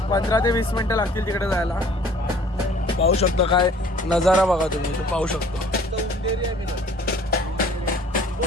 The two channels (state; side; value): normal; both; correlation 0.53